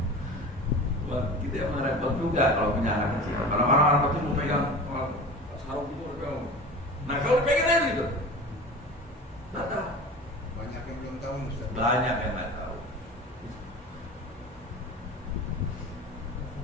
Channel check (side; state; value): both; normal; correlation 0.35